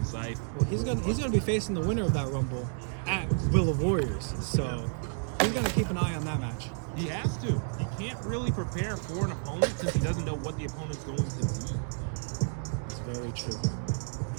Scythe. Well, he's gonna be facing the winner of that Rumble at Will of Warriors. So he's gonna keep an eye on that match. He has to. He can't really prepare for an opponent since he doesn't know what the opponent's going to be. It's very true.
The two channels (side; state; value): left; silent; 57 dB below the other